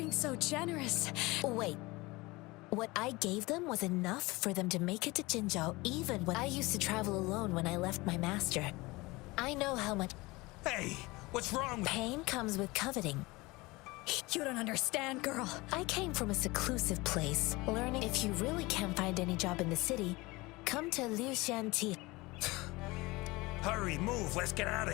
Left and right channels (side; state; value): right; quieter; 22.5 dB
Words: so generous... Wait. What I gave them was enough for them to make it to Jinzhou, even when I used to travel alone when I left my master. I know how much... Hey, what's wrong with... Pain comes with coveting. You don't understand, girl. I came from a seclusive place, learning if you really can't find any job in the city, come to Liu Shanti. Hurry, move, let's get out of